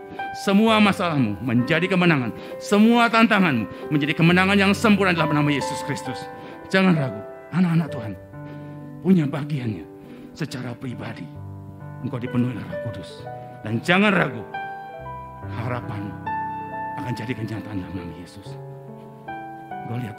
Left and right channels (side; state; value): both; identical; correlation 1.00